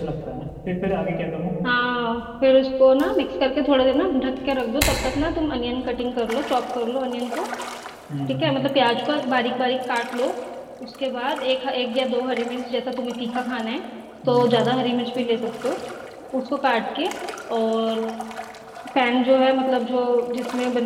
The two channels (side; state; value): both; identical; correlation 1.00